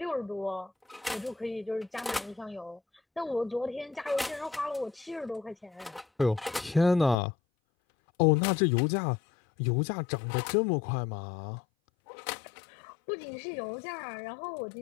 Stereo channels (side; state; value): right; drops out; at 7.2 s